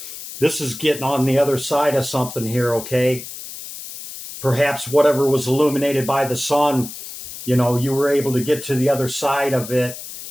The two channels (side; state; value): left; noise; hiss, 11 dB below the sound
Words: this is getting on the other side of something here, okay? Perhaps whatever was illuminated by the sun, you know, you were able to get to the other side of it